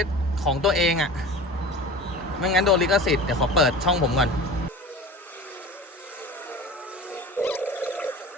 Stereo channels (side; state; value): both; normal; correlation 0.36